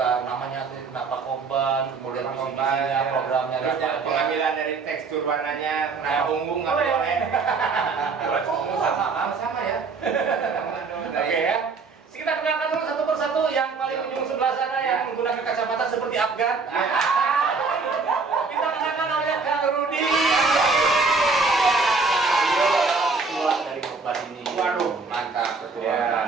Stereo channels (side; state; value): left; quieter; 4.5 dB